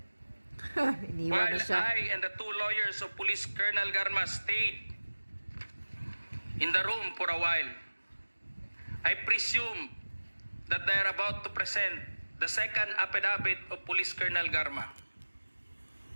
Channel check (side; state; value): both; inverted; correlation -1.00